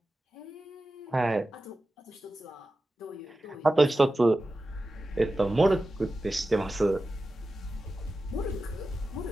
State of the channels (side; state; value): both; normal; correlation 0.93